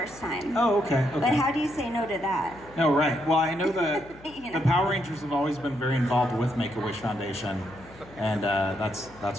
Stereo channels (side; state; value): left; noise; hum, 21 dB below the sound